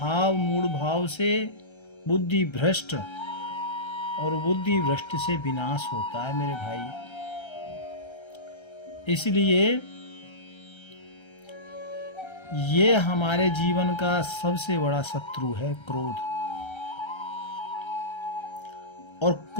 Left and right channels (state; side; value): late; right; 1.3 ms